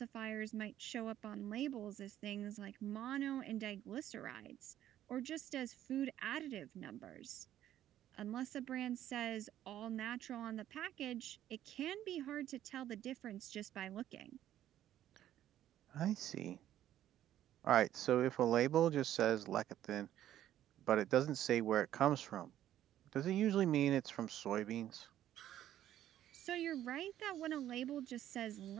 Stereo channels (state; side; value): quieter; left; 12.1 dB